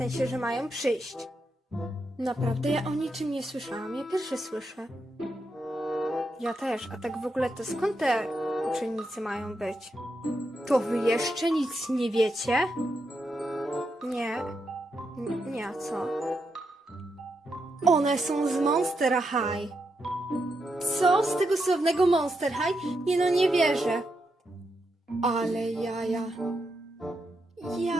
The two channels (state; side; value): normal; both; correlation 0.83